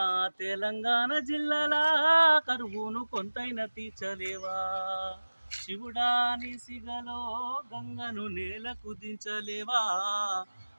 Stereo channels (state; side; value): inverted; both; correlation -1.00